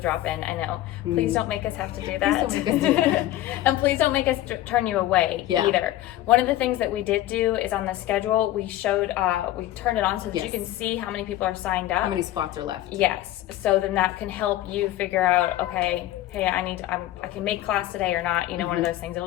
I know. Please don't make us have to do that. Please don't make us do that. And please don't make us turn you away Yeah. either. One of the things that we did do is on the schedule, we turned it on so that you Yes. can see how many people are signed up. How many spots are left? Yes. So then that can help you figure out, okay, hey, I can make class today or not. One of those things.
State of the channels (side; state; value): right; quieter; 14.5 dB